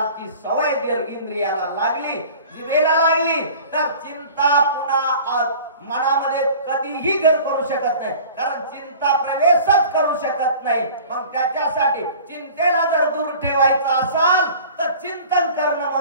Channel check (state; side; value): inverted; both; correlation -0.44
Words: सवय जर इंद्रियाला लागली, जिभेला लागली, तर चिंता पुन्हा मनामध्ये कधीही घर करू शकत नाही. कारण चिंता प्रवेशच करू शकत नाही. मग त्याच्यासाठी चिंतेला जर दूर ठेवायचं असाल तर चिंतन करणं